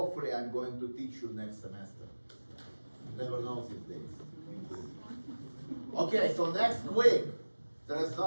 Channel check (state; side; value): inverted; both; correlation -1.00